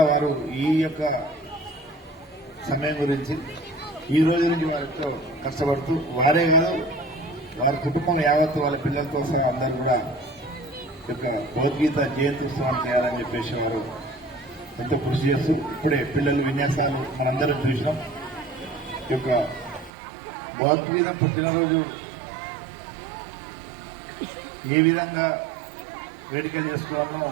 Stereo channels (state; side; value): drops out; left; at 19.9 s